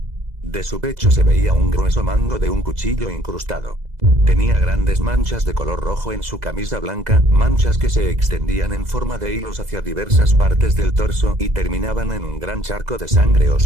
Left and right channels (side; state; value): left; late; 2.0 ms